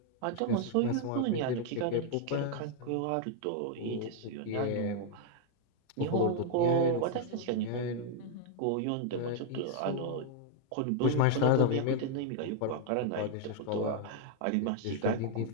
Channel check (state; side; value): different; both; correlation 0.00